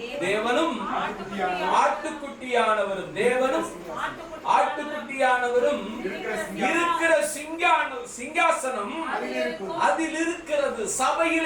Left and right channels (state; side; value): identical; both; correlation 1.00